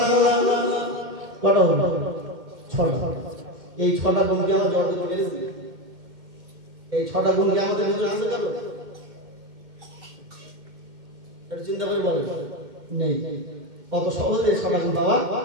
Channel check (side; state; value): left; late; 2.1 ms